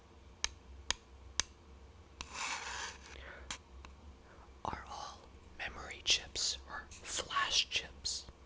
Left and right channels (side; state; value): both; identical; correlation 1.00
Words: are all memory chips or flash chips.